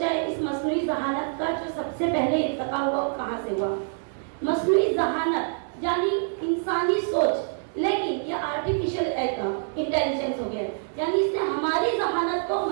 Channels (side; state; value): left; silent; 61 dB below the other